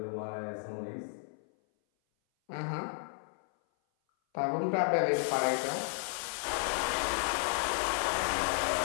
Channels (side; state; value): right; silent; 56 dB below the other